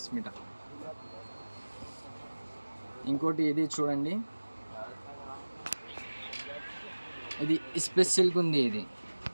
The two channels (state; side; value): inverted; both; correlation -1.00